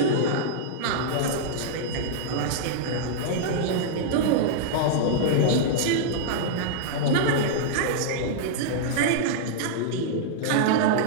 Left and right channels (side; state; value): both; different; correlation -0.02